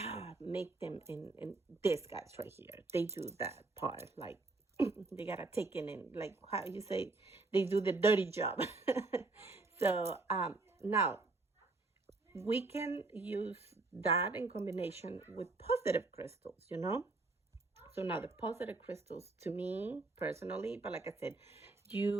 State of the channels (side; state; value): left; quieter; 3.4 dB